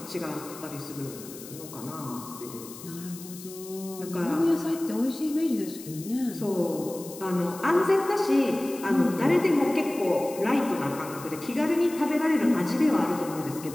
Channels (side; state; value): left; noise; hiss, 15 dB below the sound